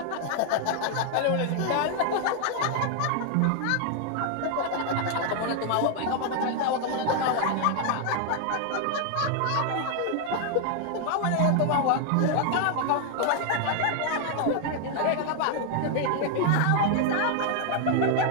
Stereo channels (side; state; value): both; different; correlation 0.00